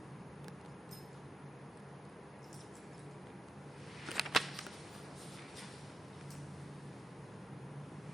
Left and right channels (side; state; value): both; normal; correlation 0.88